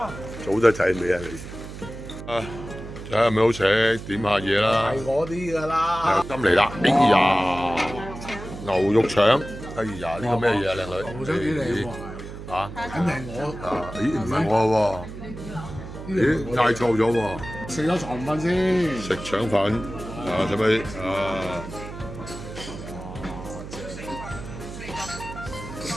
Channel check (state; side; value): noise; right; hum, 11 dB below the sound